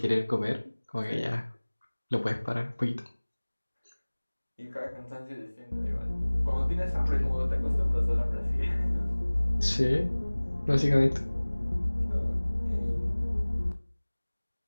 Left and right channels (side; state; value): both; inverted; correlation -1.00